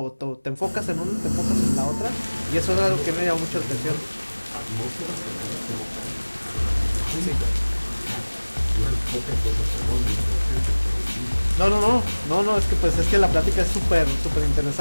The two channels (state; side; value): inverted; both; correlation -1.00